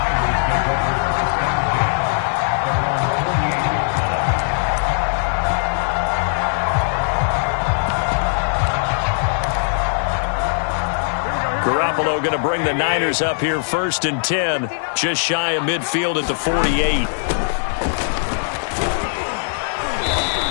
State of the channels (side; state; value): right; silent; digital silence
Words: Garoppolo going to bring the Niners up here 1st and 10, just shy of midfield at the 48.